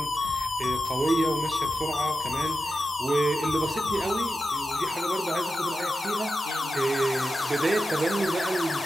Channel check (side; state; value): both; normal; correlation 0.91